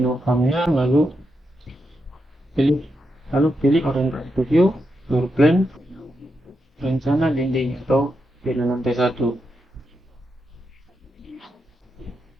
farmnya, lalu pilih orientasi to view, floor plan, rencana dinding atau dinding lantai 1.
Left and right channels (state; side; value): normal; both; correlation 0.85